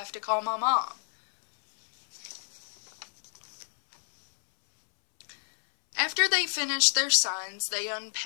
to call my mom." After they finished their signs, they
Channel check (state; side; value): silent; right; 59 dB below the other